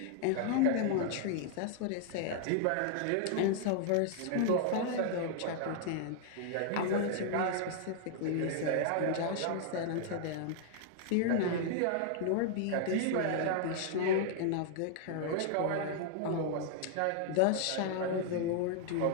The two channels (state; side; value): different; both; correlation 0.00